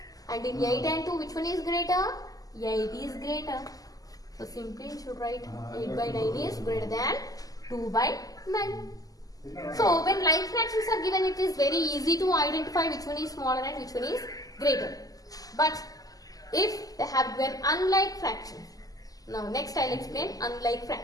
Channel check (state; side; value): late; right; 0.17 ms